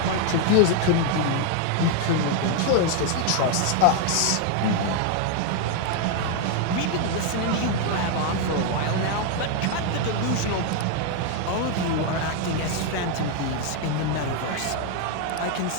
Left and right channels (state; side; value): different; both; correlation 0.01